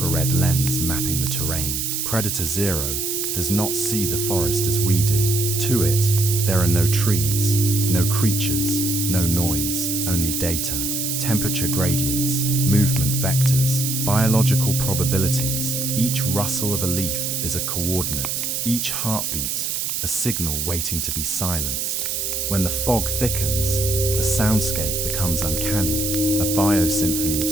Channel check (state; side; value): noise; right; hiss, 1 dB below the sound